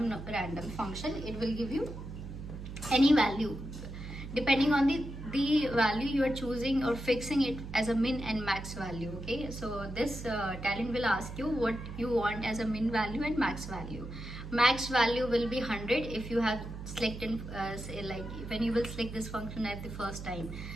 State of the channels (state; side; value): noise; right; hum, 10 dB below the sound